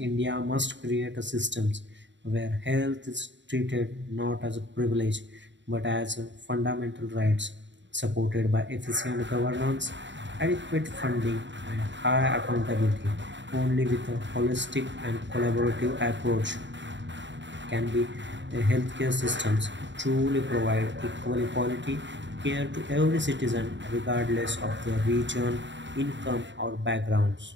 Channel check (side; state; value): left; late; 0.53 ms